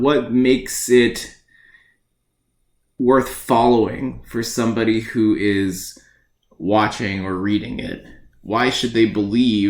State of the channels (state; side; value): identical; both; correlation 1.00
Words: makes it worth following for somebody who is watching or reading it. Why should they